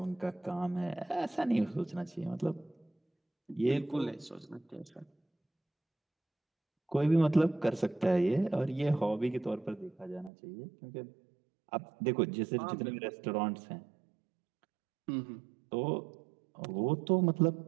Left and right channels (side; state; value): left; drops out; at 10.3 s